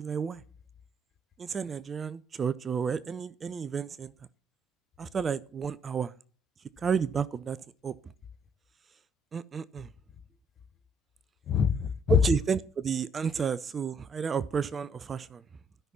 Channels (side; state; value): both; normal; correlation 0.69